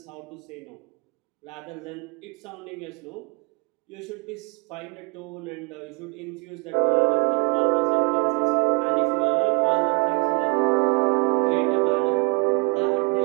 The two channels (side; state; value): left; quieter; 29.6 dB